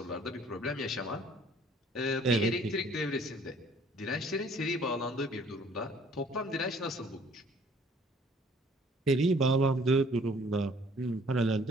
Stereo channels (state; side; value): normal; both; correlation 0.57